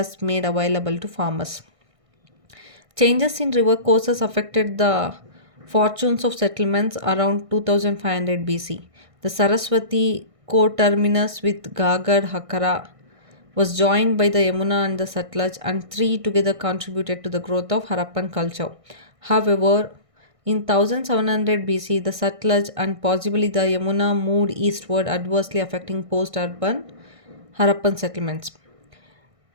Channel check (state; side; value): late; left; 1.6 ms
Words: made available to farmers. Changes in river courses affected the Fortunes of settlements around 2500 BC. The Saraswati co-terminus with Gagar Hakara was joined by the Yamuna and the Satluj, and three together contributed to the growth of Harappan culture. However, in 1700 BC, the Satluj and possibly the Yamuna moved eastward, adversely affecting post urban Harappan settlements.